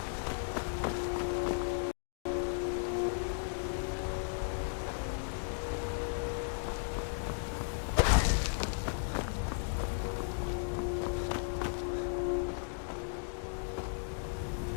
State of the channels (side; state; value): right; silent; digital silence